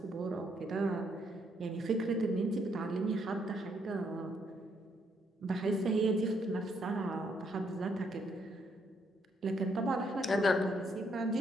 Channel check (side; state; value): both; normal; correlation 0.73